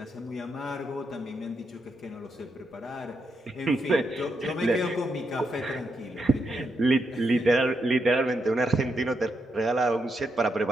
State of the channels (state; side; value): normal; both; correlation 0.82